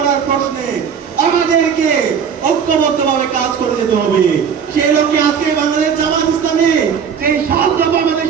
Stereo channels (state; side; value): quieter; left; 7.1 dB